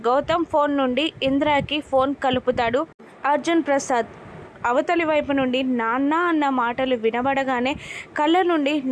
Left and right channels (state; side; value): identical; both; correlation 1.00